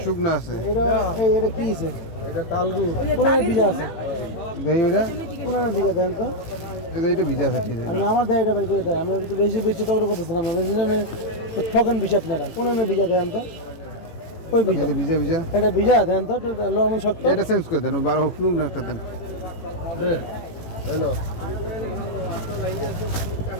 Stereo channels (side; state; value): right; late; 18 ms